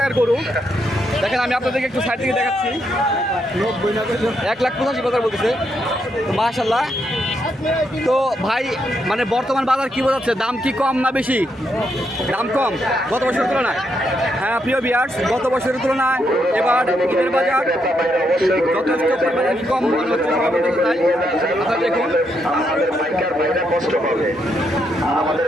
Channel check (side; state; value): both; normal; correlation 0.78